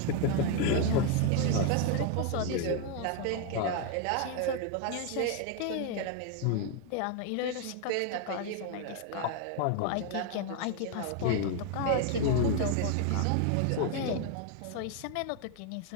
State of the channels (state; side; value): different; both; correlation 0.01